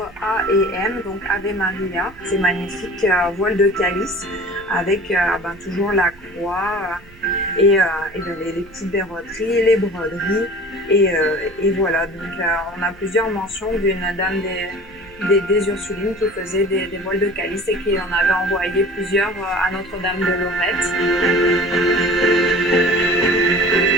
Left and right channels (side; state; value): right; noise; rumble, 24 dB below the sound